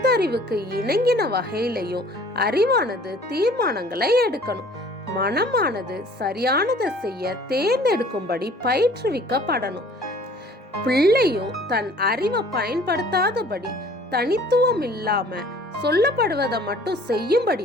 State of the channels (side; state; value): both; normal; correlation 0.52